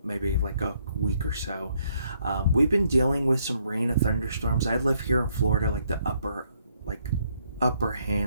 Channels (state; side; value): inverted; both; correlation -0.71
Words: maybe like a week or so. We've been dealing with some rain and thunderstorms. I live here in Florida, like the upper